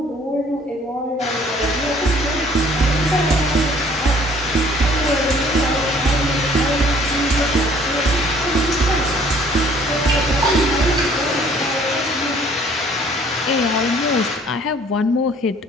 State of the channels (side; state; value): both; normal; correlation 0.57